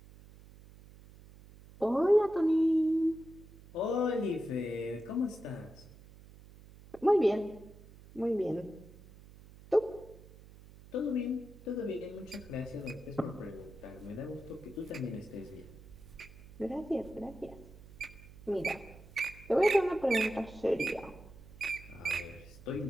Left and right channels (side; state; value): right; noise; hum, 20 dB below the sound